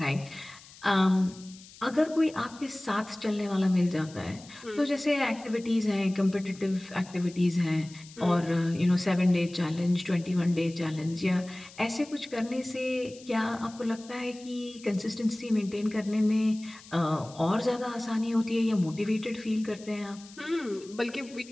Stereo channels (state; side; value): noise; left; hiss, 20 dB below the sound